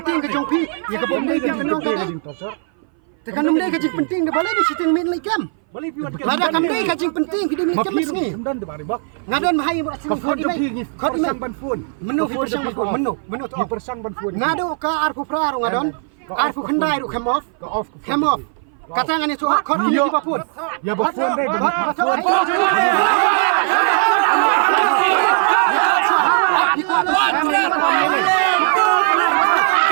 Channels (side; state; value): left; silent; 59 dB below the other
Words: ke jong pi. Ya ke bom ni kerja penting torsio. Tekan ni kerja penting ke balai ni siting main lagi kam. Lada kami ni kerja penting kita ni macam ni. Dan de bari bak. Ngadan bahai buat sini. Kau jom pi ni. Kau ni ban phun. Menu persang ban phun. Menu tu. Persang ban phun. Ngadu ka arfu pra ngadon. Arfu khandai ru come off. Katangan itu kau ni bapun. Ya bapun dai bagi. Aku